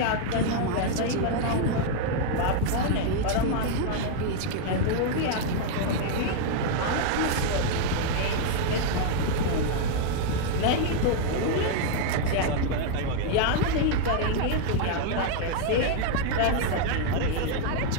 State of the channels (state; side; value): different; both; correlation 0.00